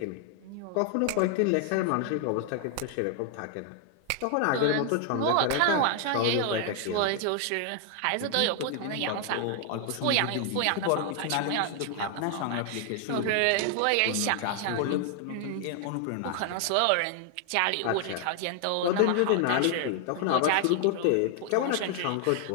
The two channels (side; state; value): both; different; correlation 0.00